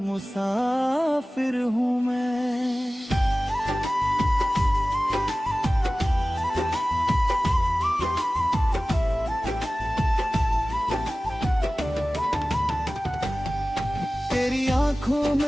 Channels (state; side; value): normal; both; correlation 0.97